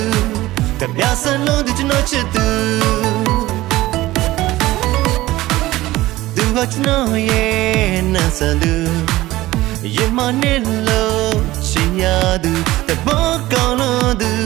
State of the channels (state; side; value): quieter; left; 17.4 dB